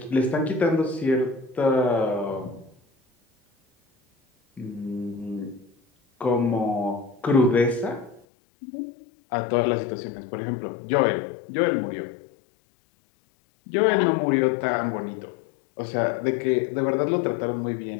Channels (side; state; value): right; drops out; at 8.2 s